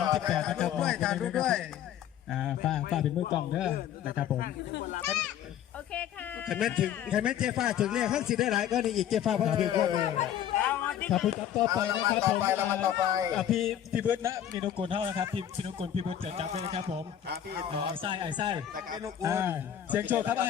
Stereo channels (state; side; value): quieter; right; 10.3 dB